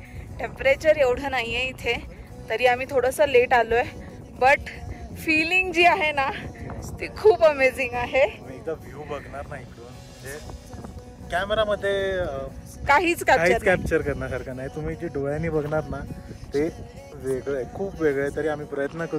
टेम्परेचर एवढं नाही आहे इथे, तरी आम्ही थोडंसं लेट आलो आहे. बट फिलिंग जी आहे ना ती खूप अमेझिंग आहे. एकदा व्ह्यू बघणार नाही इकडून, म्हणजे कॅमेरामध्ये काहीच कॅप्चर करण्यासारखं नाही. तुम्ही जे डोळ्यांनी बघणार ना ते वेगळं आहे, खूप वेगळं आहे. तरी आम्ही प्रयत्न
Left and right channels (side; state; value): both; identical; correlation 1.00